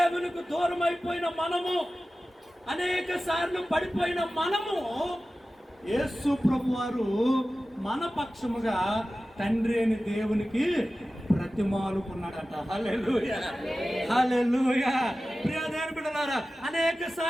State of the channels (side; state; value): both; normal; correlation 0.95